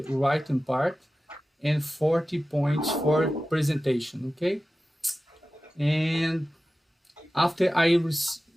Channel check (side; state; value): both; normal; correlation 0.95